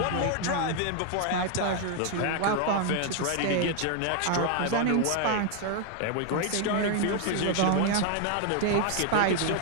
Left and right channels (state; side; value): different; both; correlation 0.00